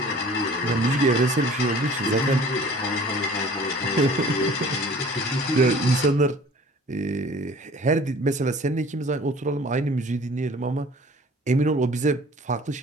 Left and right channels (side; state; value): both; normal; correlation 0.48